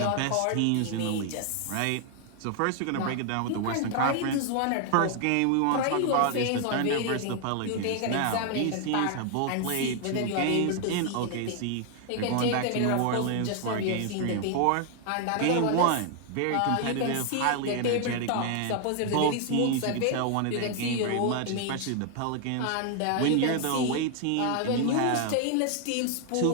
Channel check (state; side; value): different; both; correlation 0.00